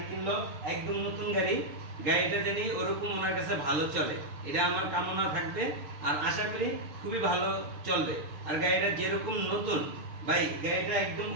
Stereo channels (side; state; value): left; late; 6.4 ms